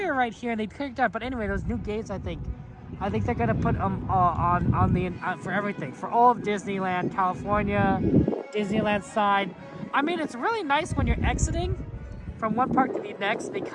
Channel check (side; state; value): both; identical; correlation 1.00